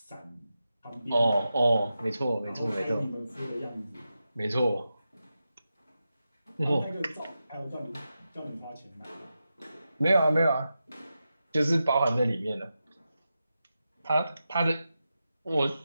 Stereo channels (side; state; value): both; inverted; correlation -0.90